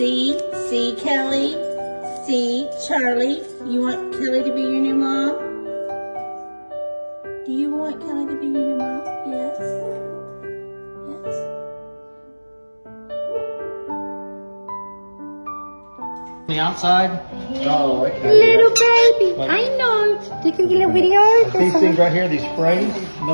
Kelly? See, Charlie, you want Kelly to be your new mom? Do you want Kelly to be your new mom? Yes? Yes? The outside. Oh, okay. Little baby, I know. You can get a video. These things right here, these sprays,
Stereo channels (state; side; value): inverted; both; correlation -1.00